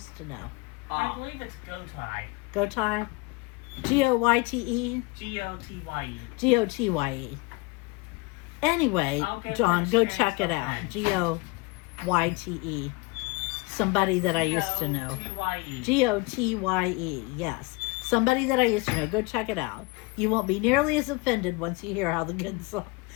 to Know. I believe it's Gotai. Gotai? Goyte? Gotye. Gotye. Anyway, I'll get John, the go experience check it of out. that. Goyte. Somebody that I used to know. Gotye. Gotye, yes. Somebody that I used to know. Go check it out. You won't be nearly as offended once you hear how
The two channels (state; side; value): quieter; right; 24.7 dB